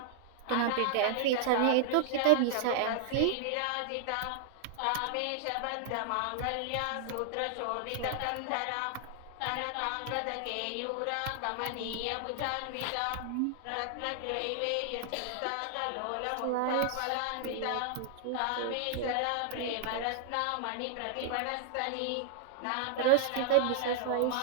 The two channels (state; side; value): different; both; correlation 0.00